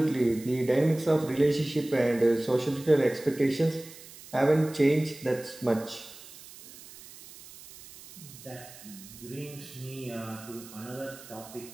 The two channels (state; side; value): noise; right; hiss, 18 dB below the sound